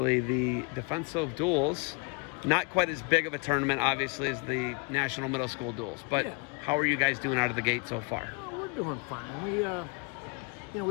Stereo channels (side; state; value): right; quieter; 33.6 dB